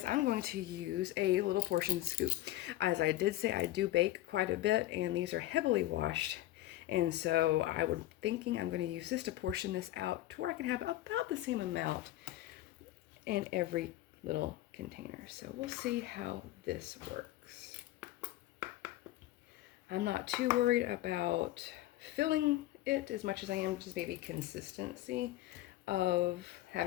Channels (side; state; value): right; quieter; 15.6 dB